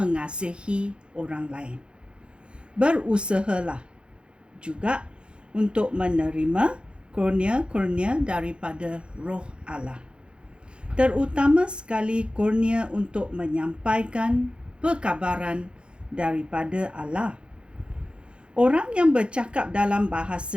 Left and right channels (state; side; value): late; left; 0.055 ms